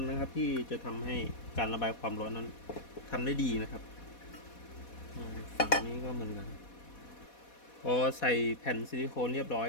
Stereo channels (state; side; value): late; right; 4.1 ms